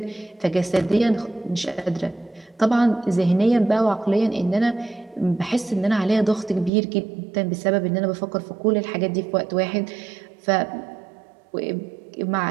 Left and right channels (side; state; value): left; drops out; at 6.7 s